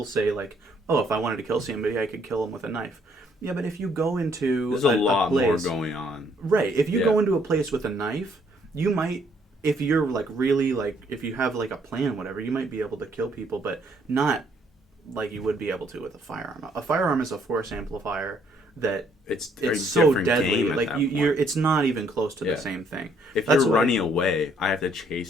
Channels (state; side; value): normal; both; correlation 0.67